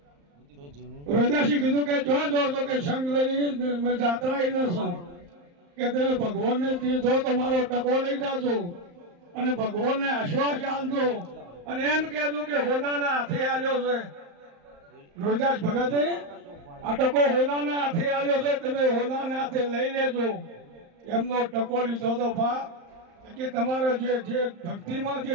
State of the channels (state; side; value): late; left; 35 ms